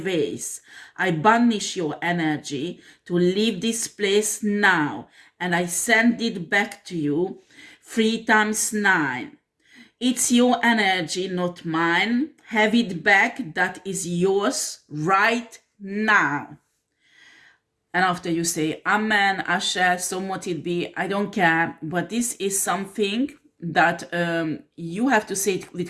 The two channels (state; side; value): identical; both; correlation 1.00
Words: I banish your energy to leave this place now, and I send it back to you 3 times 9. It's your energy, not mine. Have it back. That is yours right now. And after you say, Amen, Asher, so mote it be, I don't care. But this is something that you have to say it